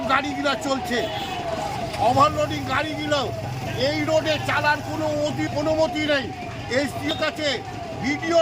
গাড়িগুলো চলছে। ওভারলোডিং গাড়িগুলো এই রোডে চালার কোনো অনুমতি নেই। এসপির কাছে,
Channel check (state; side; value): identical; both; correlation 1.00